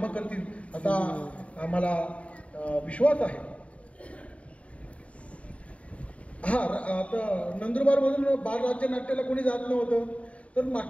करतील असा आम्हाला विश्वास आहे. हा, आता नंदुरबारमधून बालराज्य नाट्याला कोणी जात नव्हतं, तर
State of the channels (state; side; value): late; right; 0.065 ms